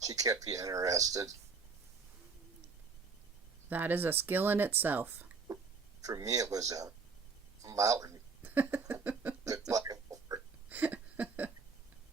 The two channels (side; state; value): left; quieter; 4.8 dB